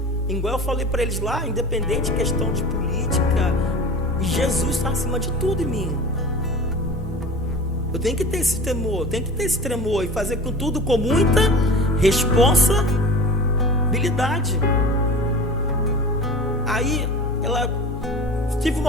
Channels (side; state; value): both; normal; correlation 0.36